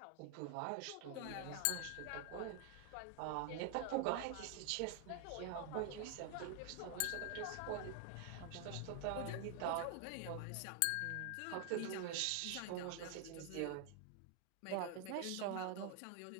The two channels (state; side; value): different; both; correlation 0.00